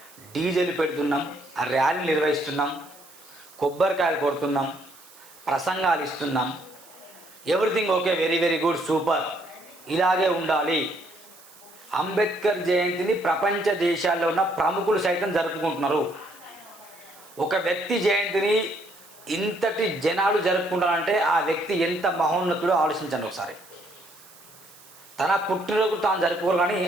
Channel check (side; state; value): right; noise; hiss, 23 dB below the sound